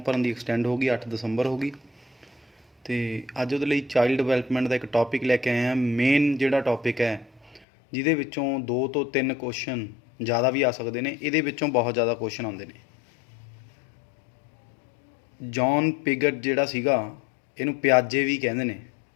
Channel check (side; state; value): right; drops out; at 7.7 s